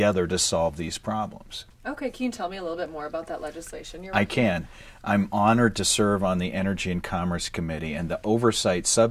to solve these problems. Okay, can you tell me a little bit more about that legislation you're I can. I'm honored to serve on the Energy and Commerce Committee, and the Oversight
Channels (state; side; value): identical; both; correlation 1.00